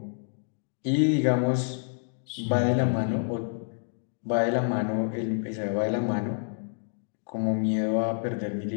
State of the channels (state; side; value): silent; right; digital silence